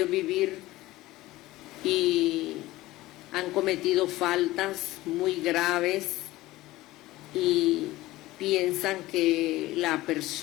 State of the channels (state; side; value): quieter; right; 17.7 dB